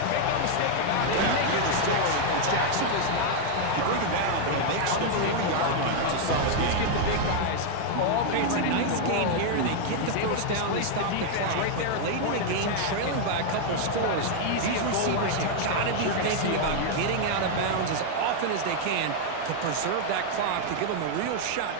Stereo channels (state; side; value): different; both; correlation 0.00